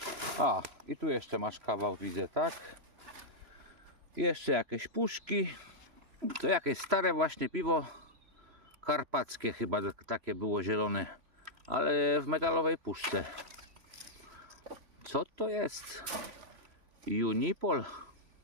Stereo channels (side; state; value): left; late; 3.0 ms